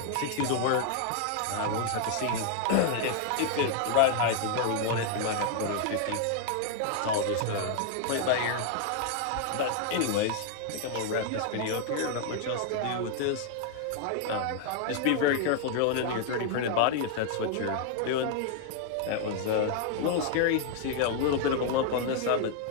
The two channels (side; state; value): both; different; correlation 0.00